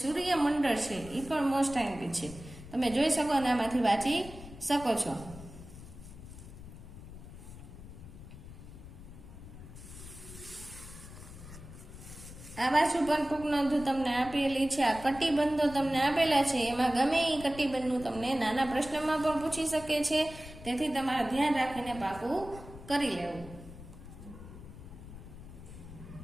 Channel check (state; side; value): noise; left; rumble, 15 dB below the sound